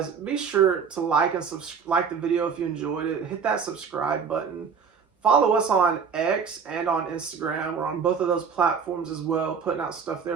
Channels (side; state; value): left; quieter; 6.2 dB